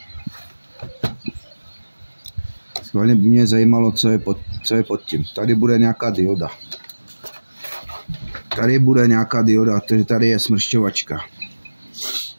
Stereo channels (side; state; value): both; inverted; correlation -1.00